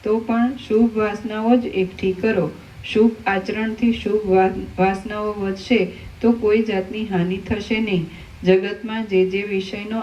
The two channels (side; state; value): both; identical; correlation 1.00